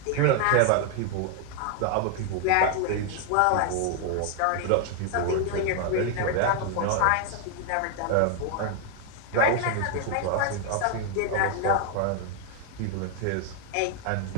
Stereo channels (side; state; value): both; different; correlation 0.01